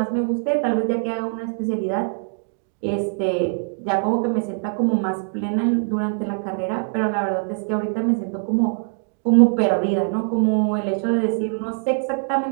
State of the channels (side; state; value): left; silent; digital silence